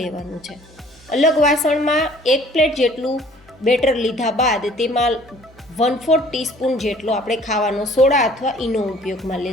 લેવાનું છે. અલગ વાસણમાં એક પ્લેટ જેટલું બેટર લીધા બાદ તેમાં 1/4 ટીસ્પૂન જેટલો આપણે ખાવાનો સોડા અથવા ઈનો ઉપયોગમાં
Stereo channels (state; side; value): normal; both; correlation 0.54